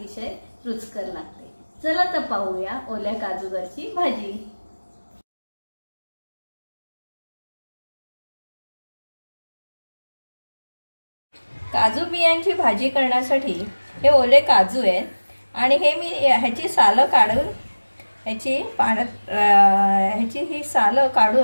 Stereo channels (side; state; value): both; inverted; correlation -1.00